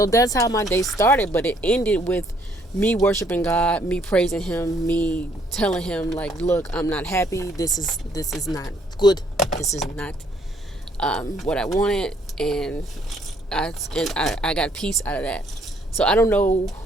that's how my day started, but it ended with me worshiping God, me praising him, me telling him like, look, I'm not happy. This is not good. This is not what I wanted, and I got peace out of that. So I don't know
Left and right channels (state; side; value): normal; both; correlation 0.66